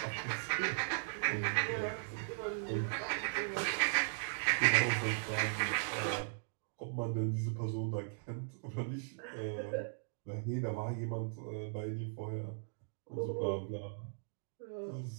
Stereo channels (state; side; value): silent; left; digital silence